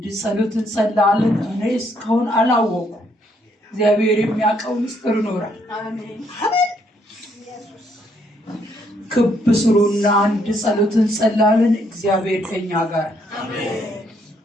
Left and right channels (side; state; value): both; normal; correlation 0.71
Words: ጸሎት እንጸልያለን። እኔ እስካሁን አላወኩም። እግዚአብሔር የሚያውቀው ምስጢር ይኖራል። አሜን። ክብ ስሩና አንድ ጸሎት እንጸልያለን። እግዚአብሔር ከኛ ጋር አሜን።